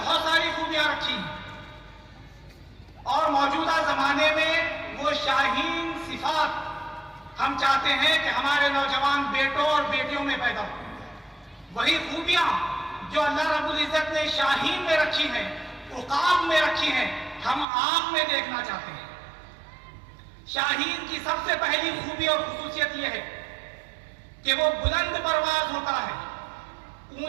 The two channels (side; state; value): left; drops out; at 17.7 s